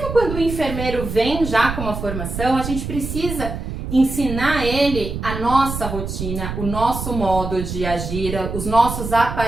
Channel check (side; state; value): right; noise; rumble, 6 dB below the sound